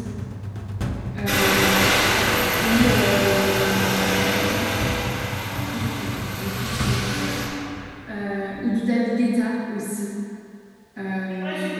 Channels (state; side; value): identical; both; correlation 1.00